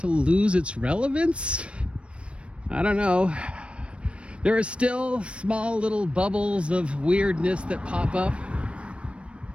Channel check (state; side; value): late; left; 0.059 ms